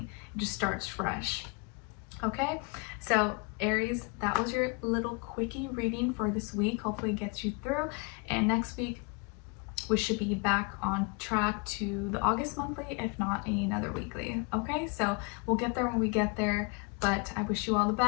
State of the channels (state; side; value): quieter; right; 30.9 dB